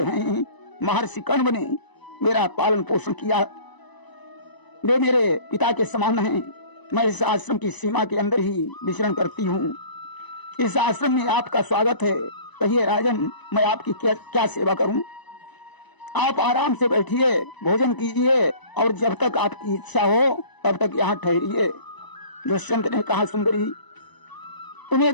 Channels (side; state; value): right; late; 1.0 ms